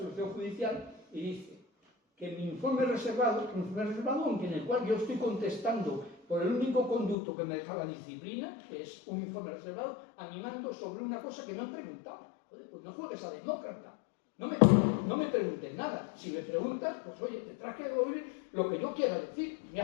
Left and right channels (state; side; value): drops out; right; at 7.2 s